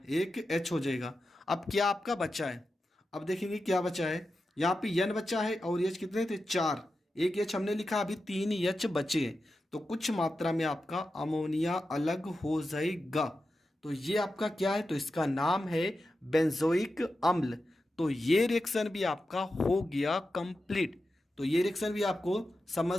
एक H हो जाएगा। अब क्या आपका बचा है? अब देखेंगे क्या बचा है। यहाँ पे एन बचा है और एच कितने थे 4, एक एच हमने लिखा, अभी 3 एच बचे हैं, तो कुछ मात्रा में आपका अमोनिया अलग हो जाएगा। तो ये आपका क्या है, तो इसका नाम है बेंजोइक अम्ल। तो ये रिएक्शन भी आपका हो गया कंप्लीट। तो ये रिएक्शन भी आपको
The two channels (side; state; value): both; normal; correlation 0.91